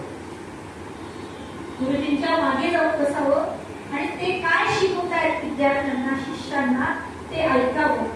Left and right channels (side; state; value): both; identical; correlation 1.00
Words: गुरुजींच्या मागे जाऊन बसावं आणि ते काय शिकवतायत विद्यार्थ्यांना शिष्यांना ते ऐकावं,